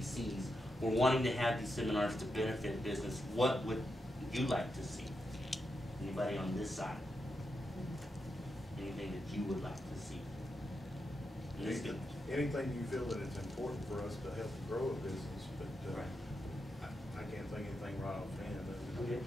We're wanting to have these seminars to benefit business. What would you like to see? Anybody on this side? Anything that you would like to see? Anything you feel that it's important for us to help grow a business, but right. I can't think of anything right offhand. Okay.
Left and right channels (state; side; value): normal; both; correlation 0.86